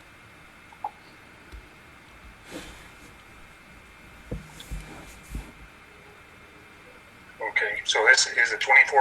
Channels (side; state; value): both; identical; correlation 1.00